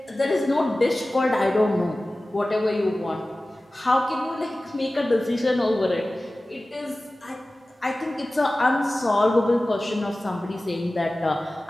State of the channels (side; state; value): both; normal; correlation 0.96